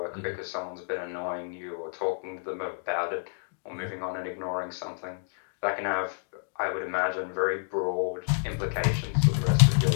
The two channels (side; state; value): right; silent; digital silence